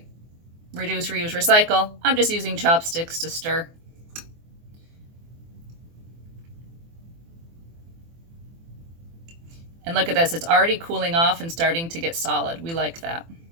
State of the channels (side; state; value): left; late; 24 ms